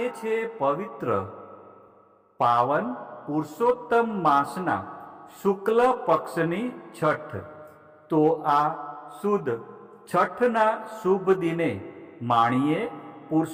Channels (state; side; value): identical; both; correlation 1.00